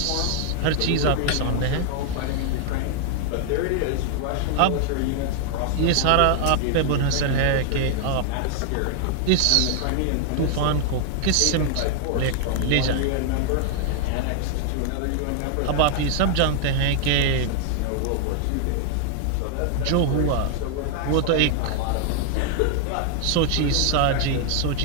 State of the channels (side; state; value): both; different; correlation 0.00